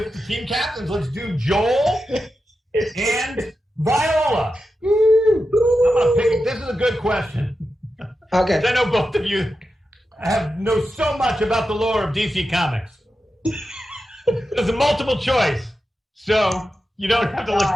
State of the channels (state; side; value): normal; both; correlation 0.90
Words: the team captains. Let's do Joel and Viola. I'm going to pick. This is a good question. Okay. I know both of you know so much about the lore of DC Comics. There's a multiple choice, so you don't have to